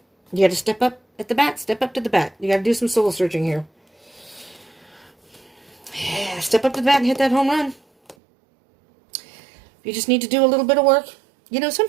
You got to step up at the bat. Step up to the bat. You got to do some soul searching here. Yeah, step up to the bat and hit that home run. You just need to do a little bit of work. You know,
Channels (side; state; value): left; drops out; at 8.2 s